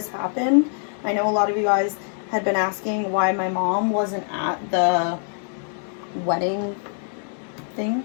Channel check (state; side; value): silent; right; 63 dB below the other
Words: happened. I know a lot of you guys had been asking why my mom wasn't at the wedding thing.